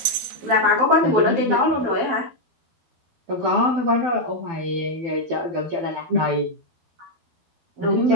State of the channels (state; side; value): late; left; 13 ms